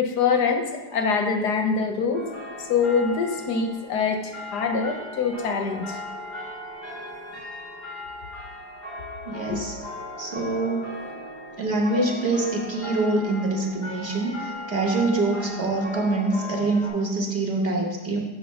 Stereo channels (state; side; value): late; right; 4.9 ms